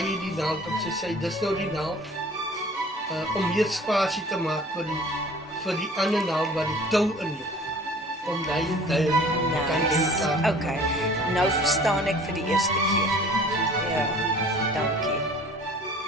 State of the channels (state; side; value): normal; both; correlation 0.48